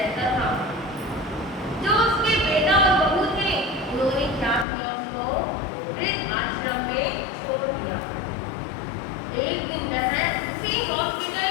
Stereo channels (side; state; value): right; drops out; at 4.7 s